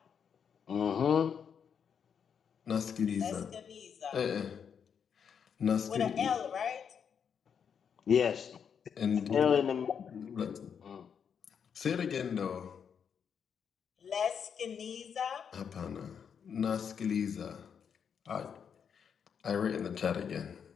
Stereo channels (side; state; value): right; quieter; 7.3 dB